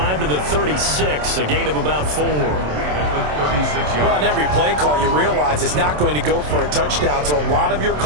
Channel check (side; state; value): left; late; 27 ms